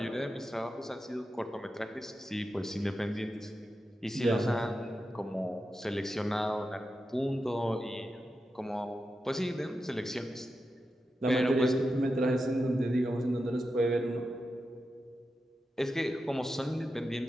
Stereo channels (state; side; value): normal; both; correlation 0.89